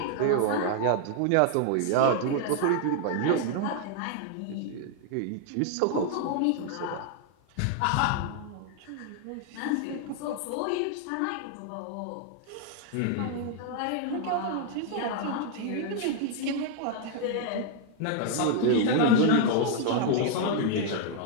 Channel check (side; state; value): both; different; correlation 0.00